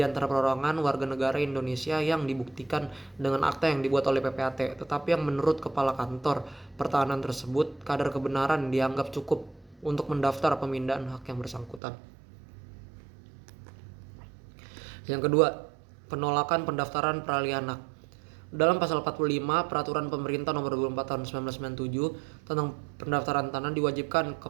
perorangan warga negara Indonesia yang dibuktikan dengan akta yang dibuat oleh PPAT, tetapi yang menurut Kepala Kantor Pertahanan tersebut kadar kebenaran dianggap cukup untuk mendaftar pemindahan hak yang bersangkutan. Yang kedua, penolakan pendaftaran peralihan hak. Dalam pasal 45 Peraturan Pemerintah Nomor 24 Tahun 1997 tentang pendaftaran tanah diwajibkan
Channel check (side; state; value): left; drops out; at 11.8 s